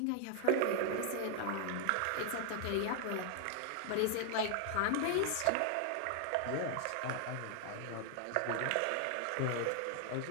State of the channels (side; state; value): both; different; correlation 0.00